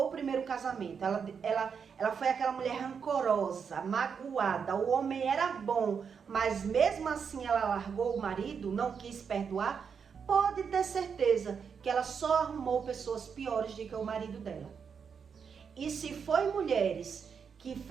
o primeiro casamento, ela foi aquela mulher rancorosa, magoada, o homem era bom, mas mesmo assim ela largou o marido, não quis perdoar, pode ter certeza que ela só arrumou pessoas piores do que o marido dela. E se foi mulheres que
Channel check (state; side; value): quieter; left; 6.5 dB